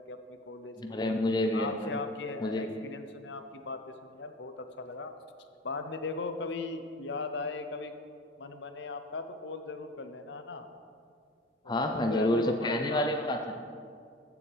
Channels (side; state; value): both; normal; correlation 0.37